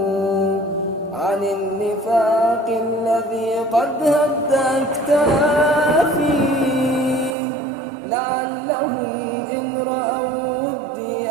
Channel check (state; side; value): drops out; left; at 7.4 s